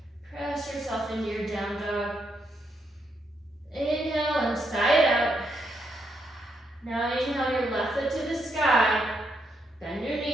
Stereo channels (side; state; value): both; normal; correlation 0.79